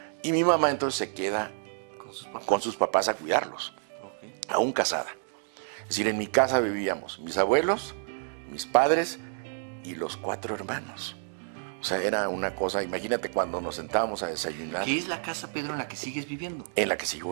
Y mi mamá entonces se queda con sus papás a cuidarlos, aún casada. Es decir, en mi casa vivíamos mis abuelos, mis padres y los 4 hermanos. O sea, era una cosa, imagínate cuando nos sentábamos a desayunar. ¿Qué es la casa, Pedro, en la que sigues viviendo? En la que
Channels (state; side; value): silent; left; digital silence